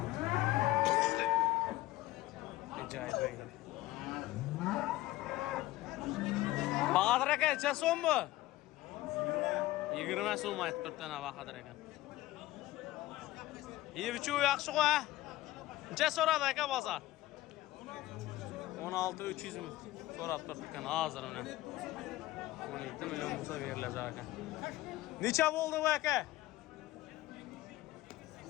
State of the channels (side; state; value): right; quieter; 16.8 dB